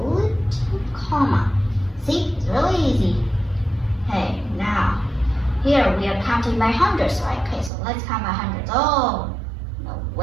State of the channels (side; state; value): left; drops out; at 7.7 s